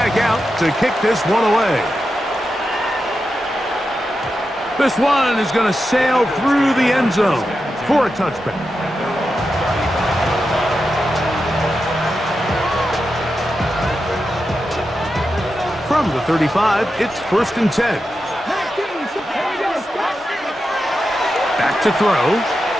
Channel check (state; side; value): normal; both; correlation 0.89